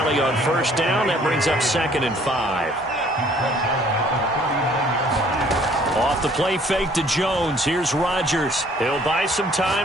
on 1st down. That brings up 2nd and 5. Off the play fake to Jones. Here's Rodgers. He'll buy some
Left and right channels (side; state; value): both; normal; correlation 0.58